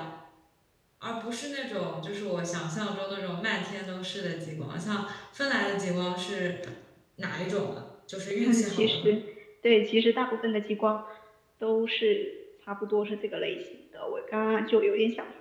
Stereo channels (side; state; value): both; identical; correlation 1.00